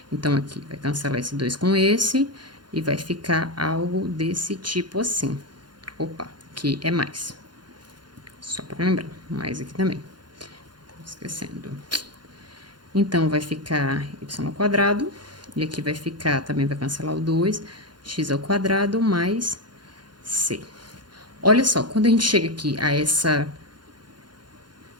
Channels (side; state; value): left; late; 0.71 ms